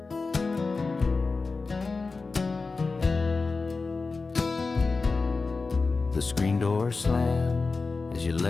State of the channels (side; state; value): right; quieter; 4.1 dB